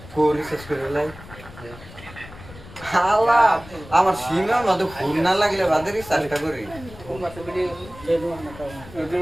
কোরি শেষ করে লাই হালা আমার সিমের মধ্যে ফোন না লাগলে বাদেরই চেষ্টা করি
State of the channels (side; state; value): left; noise; rumble, 17 dB below the sound